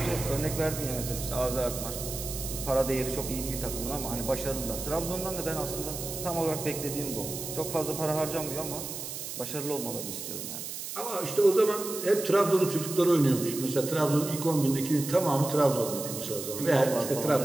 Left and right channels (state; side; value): noise; right; hiss, 7 dB below the sound